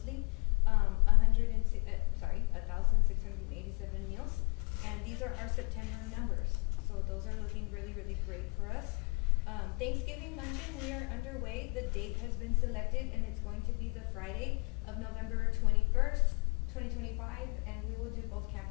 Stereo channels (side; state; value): right; quieter; 30.8 dB